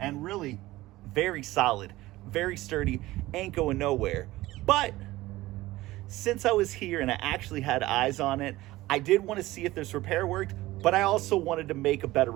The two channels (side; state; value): left; quieter; 17.8 dB